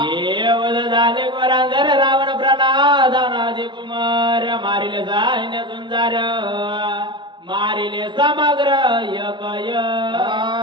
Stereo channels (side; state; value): left; late; 0.23 ms